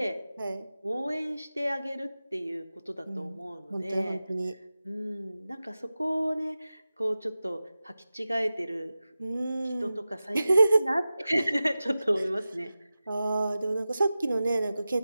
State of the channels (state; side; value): inverted; both; correlation -0.95